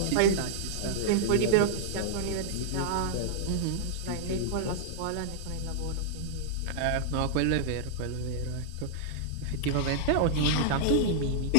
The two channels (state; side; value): different; both; correlation -0.01